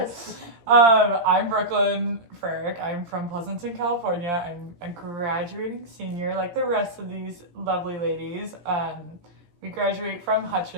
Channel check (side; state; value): left; late; 17 ms